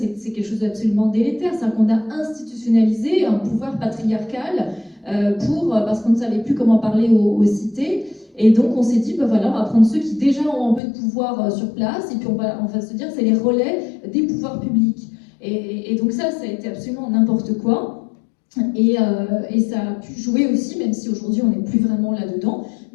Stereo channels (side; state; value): right; drops out; at 10.8 s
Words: quelque chose d'absolument délétère, c'est qu'on a institutionnalisé un pouvoir patriarcal parce qu'on ne savait plus comment parler aux cités. Et donc on s'est dit, voilà, on va prendre ceux qui déjà ont un peu de pouvoir sur place, et puis on va se dire, c'est les relais des pouvoirs publics. Et donc ça a été absolument n'importe quoi. Et ça a pu jouer aussi, même si aujourd'hui on n'est plus vraiment là-dedans,